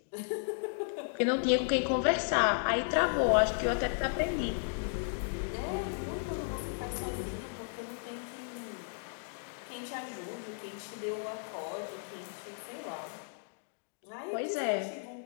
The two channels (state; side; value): silent; right; digital silence